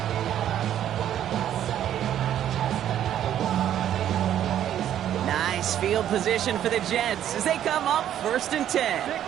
Nice field position for the Jets as they come up 1st and 10.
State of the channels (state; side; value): quieter; left; 10.8 dB